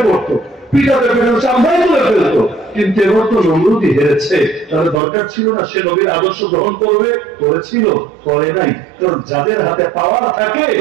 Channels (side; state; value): left; drops out; at 5.0 s